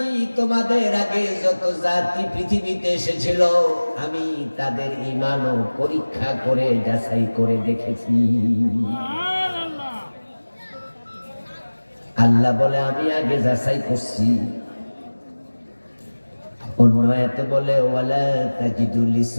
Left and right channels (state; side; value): inverted; both; correlation -1.00